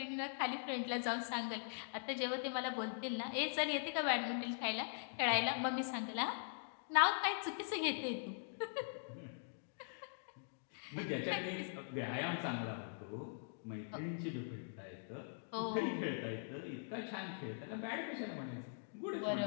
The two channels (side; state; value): right; silent; digital silence